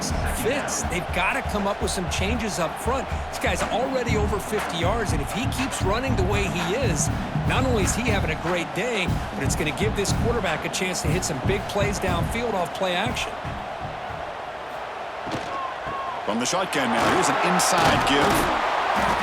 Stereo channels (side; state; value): both; identical; correlation 1.00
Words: fits. They've got to come up with some changes up front. This guy's already over 50 yards, and if he keeps running the way he is, not only is he having a great day, but it's going to give this quarterback a chance to hit some big plays downfield off play action. From the shotgun now, here's an inside give.